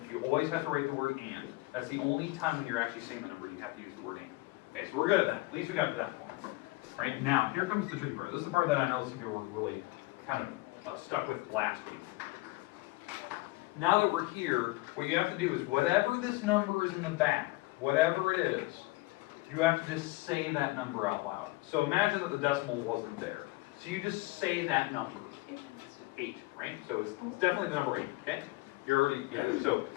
You always have to write the word and. That's the only time when you're actually saying the number you have to use the word and. Okay, so we're good at that. At least we got to that point. Right, now, here comes the tricky part. This is the part that I know some people were really kind of stuck with last week. Now that we're here, what you have to do is whatever this number is in the back, whatever it is, you have to just say that number out loud. So imagine that the decimal wasn't there. So you just say that number. 8, right? So it's definitely the number 8, okay? You're already, yeah, so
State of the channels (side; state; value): right; quieter; 21.8 dB